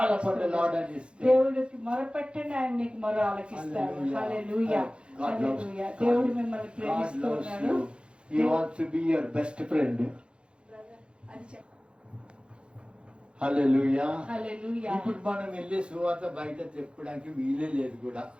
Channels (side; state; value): left; late; 0.056 ms